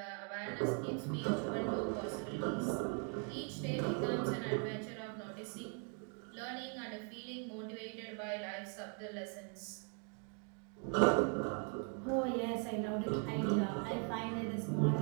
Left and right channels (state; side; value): quieter; left; 37.8 dB